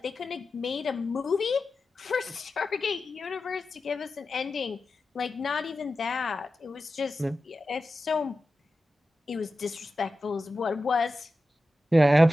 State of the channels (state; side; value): normal; both; correlation 0.93